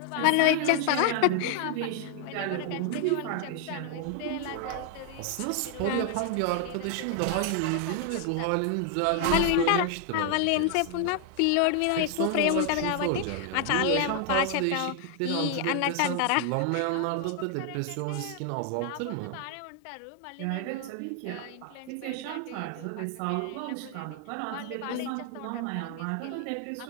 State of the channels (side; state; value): both; different; correlation 0.00